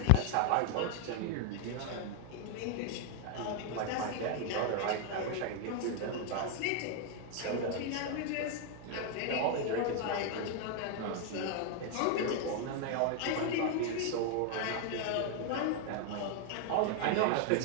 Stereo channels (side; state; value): both; different; correlation 0.00